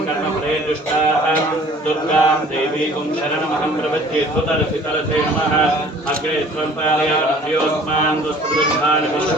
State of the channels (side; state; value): both; normal; correlation 0.51